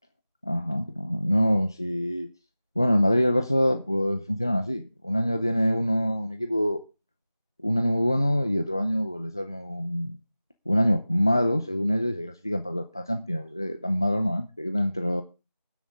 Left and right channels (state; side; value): inverted; both; correlation -0.96